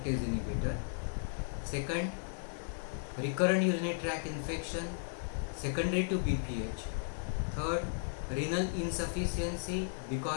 inhibitor. Second, recurrent urinary tract infection secondary to BPH. Third, renal insufficiency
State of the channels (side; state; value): right; silent; digital silence